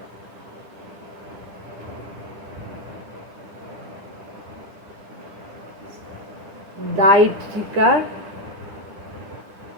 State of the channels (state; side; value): late; left; 10 ms